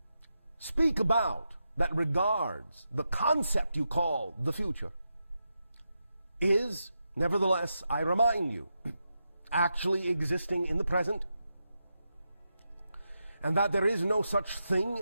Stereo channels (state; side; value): inverted; both; correlation -0.87